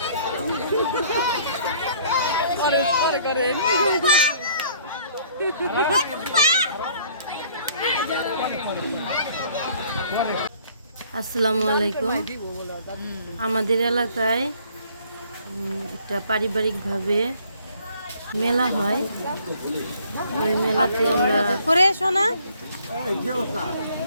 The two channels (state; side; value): inverted; both; correlation -0.59